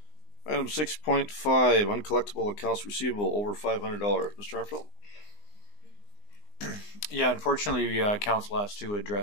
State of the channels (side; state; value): right; late; 19 ms